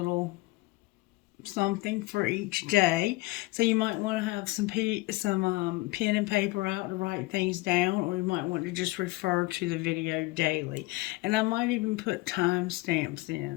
something for each day. So you might want to have some pen and paper out to write things down, or you might want to just refer to the video daily. And I might even put timestamps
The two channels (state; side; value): quieter; right; 21.6 dB